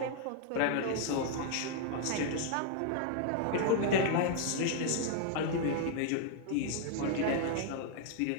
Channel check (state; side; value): different; both; correlation 0.00